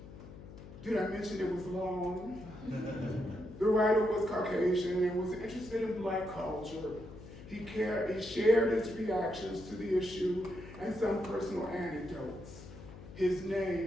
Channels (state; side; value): noise; left; hum, 15 dB below the sound